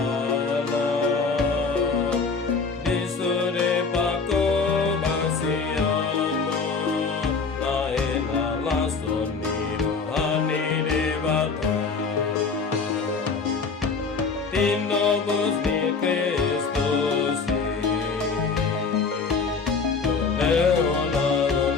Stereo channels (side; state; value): right; quieter; 4.8 dB